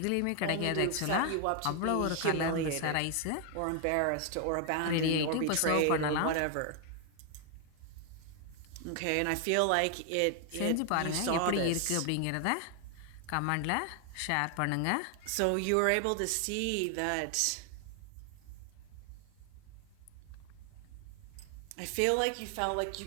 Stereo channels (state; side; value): different; both; correlation 0.00